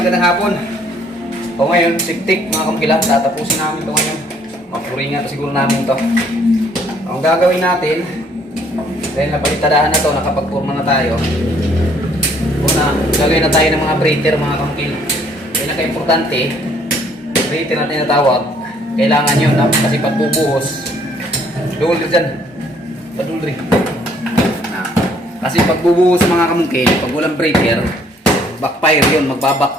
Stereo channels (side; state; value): both; normal; correlation 0.63